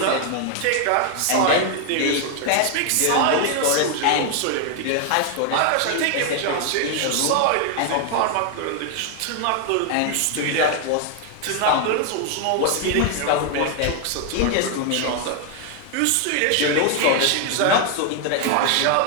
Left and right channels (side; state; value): both; different; correlation 0.00